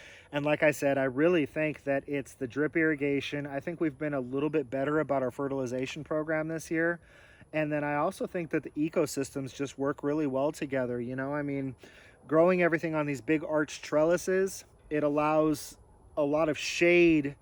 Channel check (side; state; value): both; identical; correlation 1.00